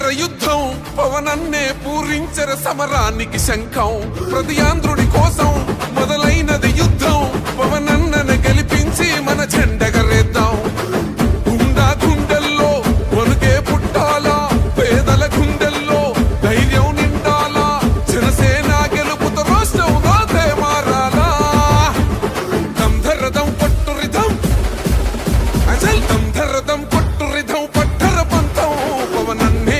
యుద్ధం పవనన్నే పూరించర సమరానికి శంఖం. ప్రతి ఆంధ్రుడి కోసం మొదలైనది యుద్ధం పవనన్నను గెలిపించి మన జెండగరేద్దాం. గుండా గుండెల్లో వణుకే పుట్టాలా పేదల గుండెల్లో ధైర్యం నిండాలా జనసేన గెలుపుతో రాష్ట్రం రాతే మారాలా. దంధరదం కొట్టురిదం అచల్ దంధరదం కొట్టురిదం పట్టర పంతం పవనన్నే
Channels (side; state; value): both; identical; correlation 1.00